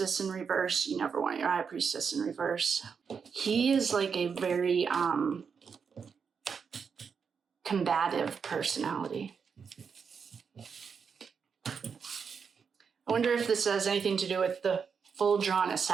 in reverse. You never want your High Priestess in reverse. He is like a very combative personality. I wonder if this has anything to do with the full drawn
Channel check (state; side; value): quieter; left; 6.2 dB